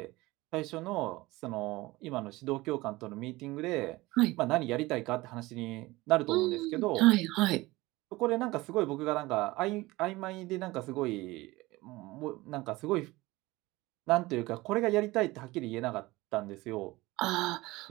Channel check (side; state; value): left; quieter; 20.2 dB